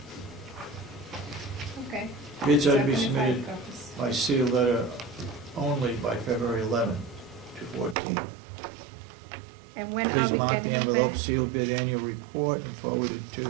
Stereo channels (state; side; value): drops out; left; at 8.0 s